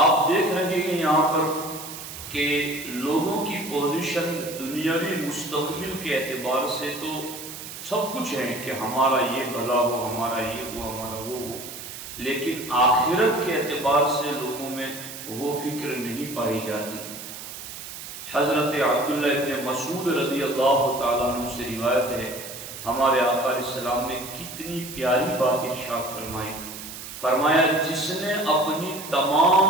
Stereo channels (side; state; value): right; noise; hiss, 11 dB below the sound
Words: دیکھ رہے ہیں یہاں پر کہ لوگوں کی پوزیشن دنیاوی مستقبل کے اعتبار سے تو سب کچھ ہے کہ ہمارا یہ بھلا ہو، ہمارا یہ ہو، ہمارا وہ ہو، لیکن آخرت کے اعتبار سے لوگوں میں وہ فکر نہیں پائی جاتی۔ حضرت عبداللہ ابن مسعود رضی اللہ تعالیٰ عنہ سے روایت ہے، ہمارے آقا علیہ السلام نے کتنی پیاری بات ارشاد فرمائی، فرمایا جس نے اپنی